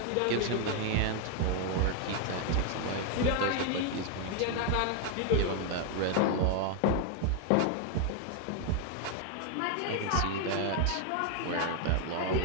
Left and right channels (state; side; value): different; both; correlation 0.00